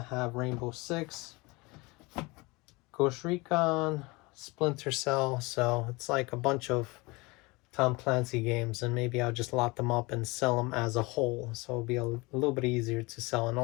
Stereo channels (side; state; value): right; quieter; 24.7 dB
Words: have Rainbow Six, Ghost Recon, Splinter Cell. So it's like a bunch of Tom Clancy games, and maybe I'll just lot them up and sell them as a whole, so it'll be a little bit easier to sell. And